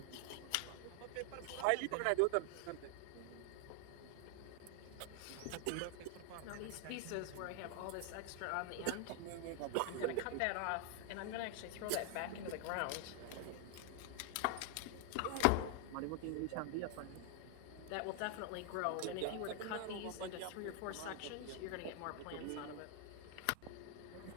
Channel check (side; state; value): both; different; correlation 0.00